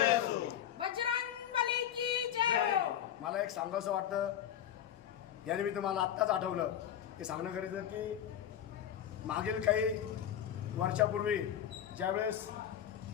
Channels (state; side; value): quieter; right; 10.3 dB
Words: मला एक सांगायचं वाटतं, याने मी तुम्हाला आत्ताच आठवलं ते सांगणं गरजेचं की मागील काही वर्षापूर्वी ज्यावेळेस